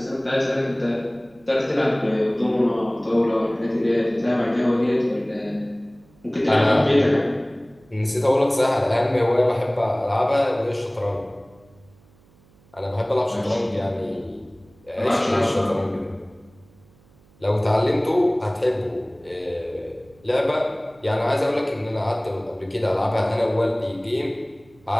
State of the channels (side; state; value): right; noise; hum, 30 dB below the sound